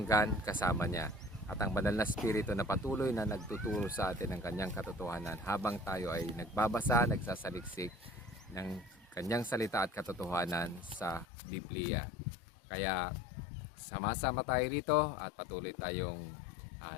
kasama niya. At ang banal na spirito na patuloy na nagtuturo sa atin ng kanyang katotohanan habang tayo ay nagbabasa, nagsasaliksik ng kanyang salita at katotohanan sa Biblia. Kaya sama-sama tayo rito at patuloy tayong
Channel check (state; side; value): drops out; right; at 11.2 s